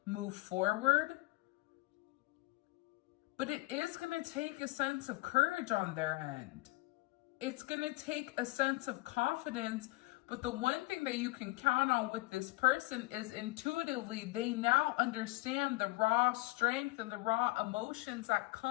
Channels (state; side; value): quieter; right; 21.7 dB